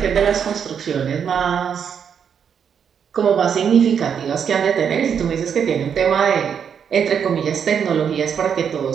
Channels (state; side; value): quieter; left; 7.5 dB